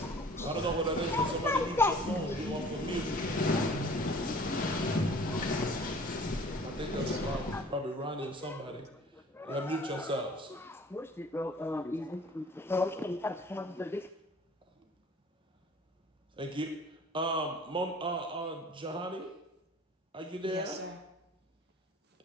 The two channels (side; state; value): both; normal; correlation 0.49